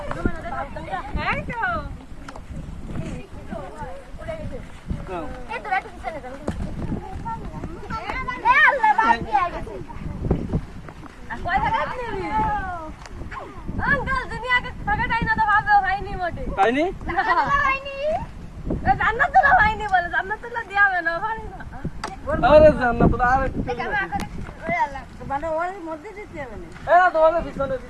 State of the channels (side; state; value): both; identical; correlation 1.00